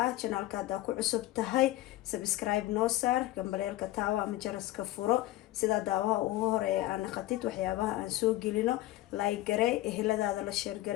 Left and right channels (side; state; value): right; quieter; 16.2 dB